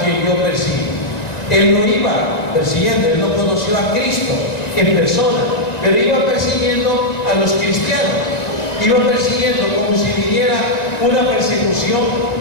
quien yo persigo? Él no iba persiguiendo, él no conoció a Cristo en persona, pero iba persiguiendo a los cristianos, iba persiguiendo como si viniera una persecución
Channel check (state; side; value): late; right; 1.9 ms